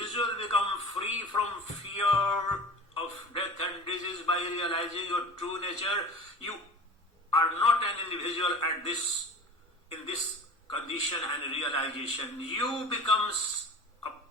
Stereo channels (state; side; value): normal; both; correlation 0.37